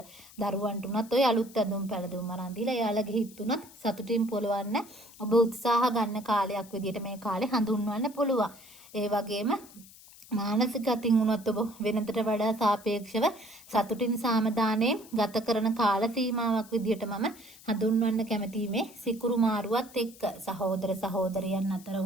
දරුවන්ට උනත් ඔය අලුත් ඇඳුම් පැළඳුම් අරන් දීලා එයාලගේ හිත උනත් සතුටින් පොළවන්න ඔබ උත්සාහ ගන්න කාලයක් විදියට මේ කාලේ හඳුන්වන්න පුළුවන්. ඒ වගේම මානසික අතින් උනත් ඔබ වෙනතට වඩා සාපේක්ෂව සතුටින් සාමදානයෙන් ගත කරන කාල සීමාවක් විදියට මම හඳුන්වන්න කැමතියි මේ සිකුරු මාරුවත් එක්ක. සහෝදර සහෝදරියන් අතර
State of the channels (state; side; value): noise; left; hiss, 21 dB below the sound